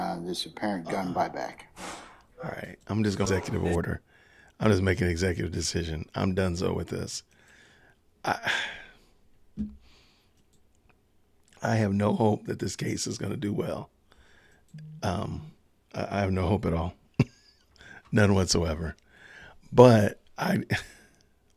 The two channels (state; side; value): identical; both; correlation 1.00